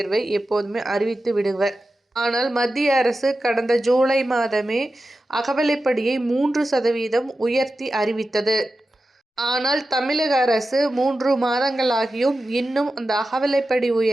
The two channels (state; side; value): normal; both; correlation 0.92